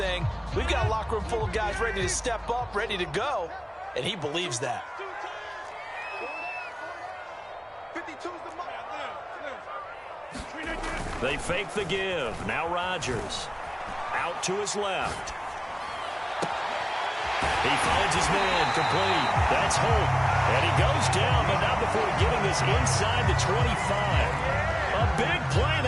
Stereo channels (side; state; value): both; identical; correlation 1.00